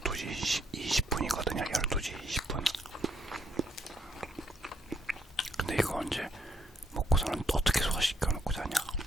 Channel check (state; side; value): normal; both; correlation 0.73